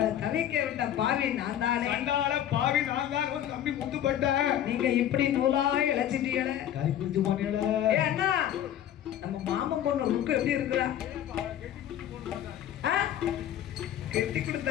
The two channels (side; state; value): right; quieter; 11.0 dB